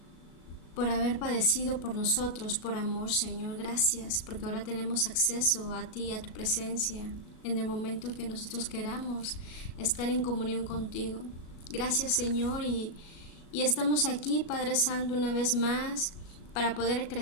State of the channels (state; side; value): late; right; 37 ms